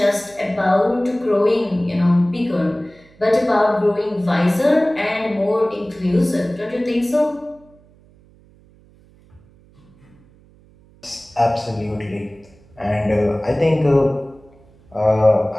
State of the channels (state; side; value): noise; right; hum, 28 dB below the sound